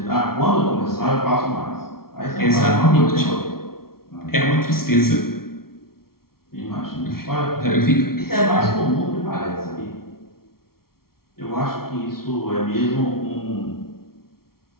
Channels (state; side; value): late; right; 0.94 ms